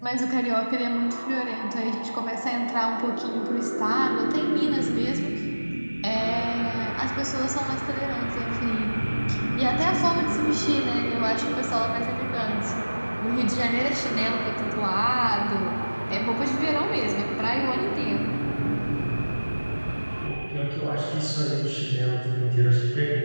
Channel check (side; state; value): both; inverted; correlation -1.00